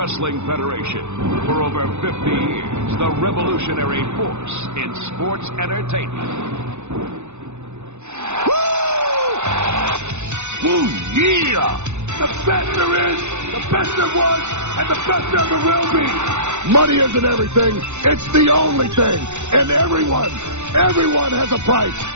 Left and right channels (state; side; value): late; left; 0.83 ms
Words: Federation. For over 50 years, the revolutionary force in sports entertainment. Woo, yeah! The best there is, the best there was, and the best there ever will be. Money isn't everything, it's the only thing. And everyone has a price